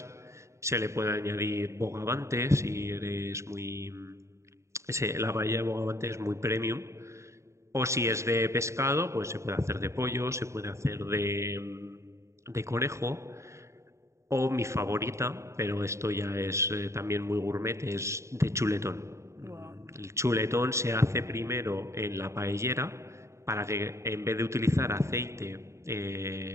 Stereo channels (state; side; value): late; left; 0.14 ms